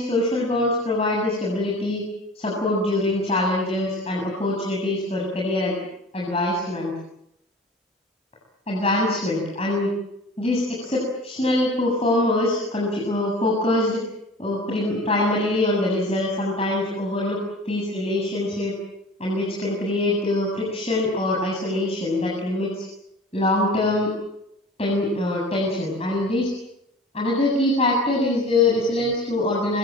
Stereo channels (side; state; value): both; normal; correlation 0.40